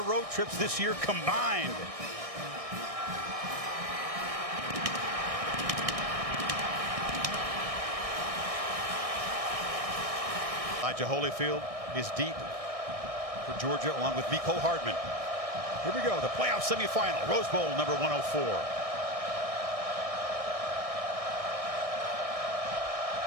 road trips this year combined. Elijah Holyfield is deep for Georgia, along with Mecole Hardman. Here we go, the playoff semifinal, Rose Bowl number 104.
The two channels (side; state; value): left; late; 1.6 ms